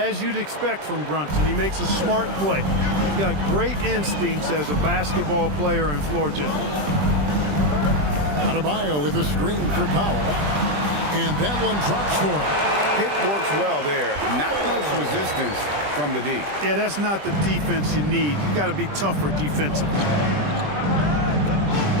you'd expect from Brunson, he makes a smart play. He's got great instincts as a basketball player and floor general. Adebayo with a screen for Powell. And that one drops for him. Pick works well there. Not much resistance from the D. Yeah, that's not the defense you need. You got to be tougher defensively.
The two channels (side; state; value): left; late; 20 ms